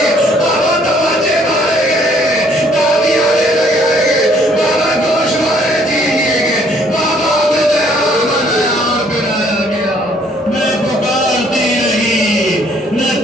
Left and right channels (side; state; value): both; normal; correlation 0.62